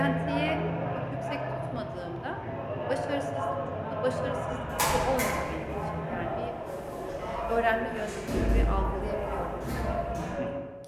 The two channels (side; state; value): both; identical; correlation 1.00